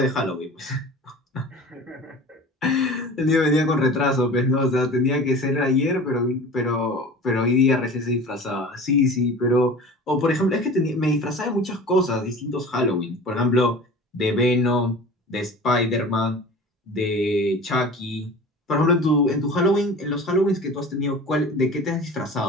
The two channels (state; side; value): normal; both; correlation 0.39